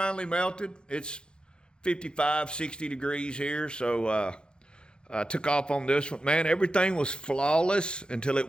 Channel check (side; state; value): right; late; 0.050 ms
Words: melted. It's 55, 60 degrees here, so I took off on this one. Man, everything was flawless until it